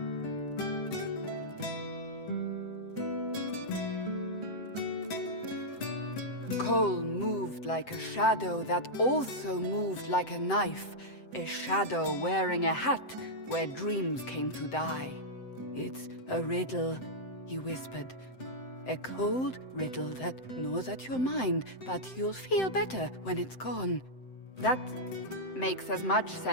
Cole moved like a shadow that also moved like a knife. A shadow wearing a hat where dreams came to die. It's a riddle, he whispered. A cold riddle that gnaws at your mind, but you'll feel better when it's gone. That makes as much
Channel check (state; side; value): late; right; 7.8 ms